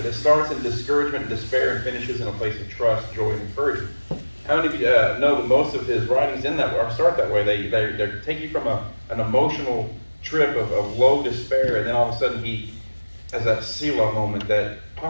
it starts in discouragement and despair and finishes in a place of trust, joy, and encouragement. How many of you know that most of his writings in that or start that way? They take you from an emotional trip of low despair, and then all of a sudden he has that Selah moment, that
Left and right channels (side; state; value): both; inverted; correlation -1.00